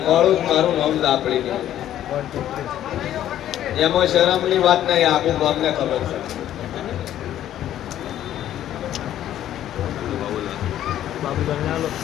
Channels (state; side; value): quieter; right; 11.9 dB